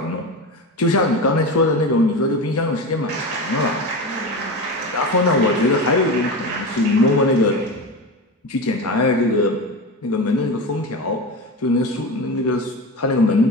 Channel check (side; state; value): both; normal; correlation 0.24